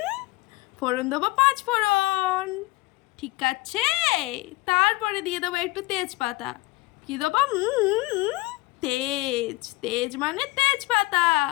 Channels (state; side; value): quieter; right; 22.1 dB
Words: ফোড়ন দেবো 5 ফোড়ন। ঠিক আছে, তারপরে দিয়ে দেবো একটু তেজপাতা। কি দেবো? তেজ তেজ মানে তেজপাতা।